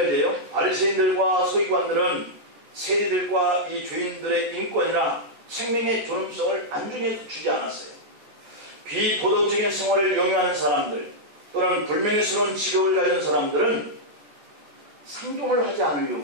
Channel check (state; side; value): late; left; 14 ms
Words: 바리새인들과 서기관들은 세리들과 이 죄인들의 인권이나 생명의 존엄성을 안중에 주지 않았어요. 비도덕적인 생활을 영위하는 사람들 또는 불명예스러운 직업을 가진 사람들은 상종을 하지